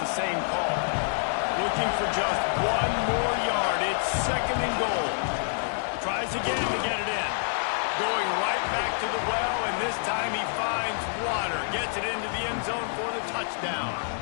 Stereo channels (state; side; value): silent; right; digital silence